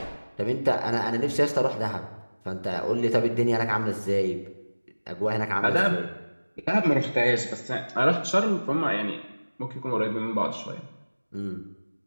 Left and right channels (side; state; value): both; inverted; correlation -1.00